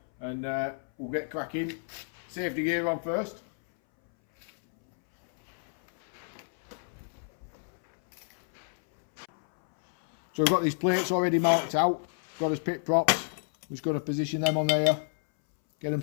and we'll get cracking. Safety gear on first. So we've got these plates already marked out, got his pit props. We're just going to position them on there, get them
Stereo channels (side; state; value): right; silent; 58 dB below the other